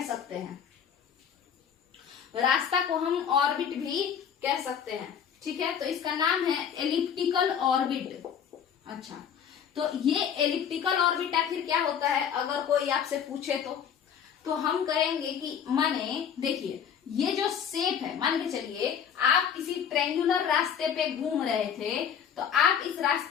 सकते हैं, रास्ता को हम ऑर्बिट भी कह सकते हैं। ठीक है, तो इसका नाम है एलिप्टिकल ऑर्बिट। अच्छा, तो ये एलिप्टिकल ऑर्बिट आखिर क्या होता है अगर कोई आपसे पूछे तो हम कहेंगे कि माने, देखिए, ये जो शेप है, मान के चलिए आप किसी ट्रायंगुलर रास्ते पे घूम रहे थे, तो आप इस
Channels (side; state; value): right; quieter; 8.0 dB